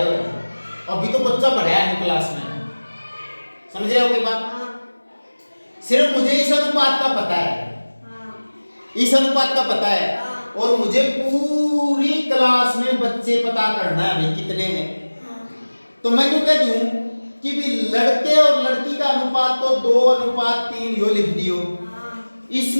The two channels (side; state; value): both; inverted; correlation -1.00